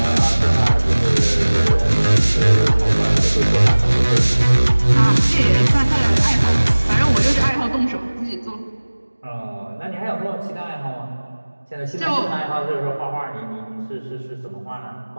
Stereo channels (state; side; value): inverted; both; correlation -1.00